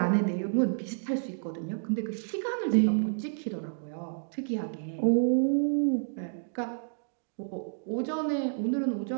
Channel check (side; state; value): left; silent; digital silence